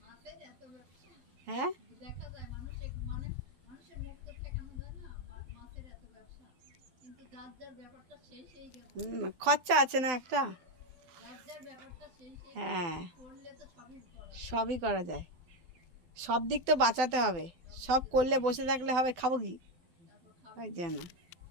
হ্যাঁ খরচা আছে না একটা। হ্যাঁ সবই করা যায়, সব দিক তো বাঁচাতে হবে। সব করলে বসে থাকলে হবে, খাবো কি? ওই জন্য।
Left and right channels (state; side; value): late; left; 12 ms